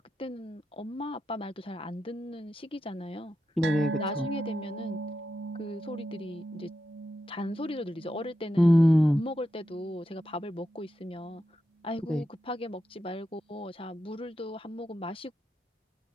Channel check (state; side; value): normal; both; correlation 0.88